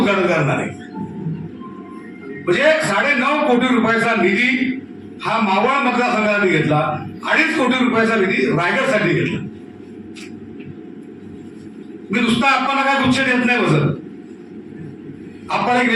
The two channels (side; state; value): both; identical; correlation 1.00